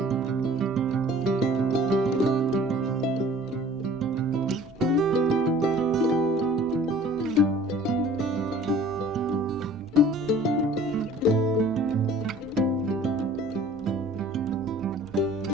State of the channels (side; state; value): both; normal; correlation 0.49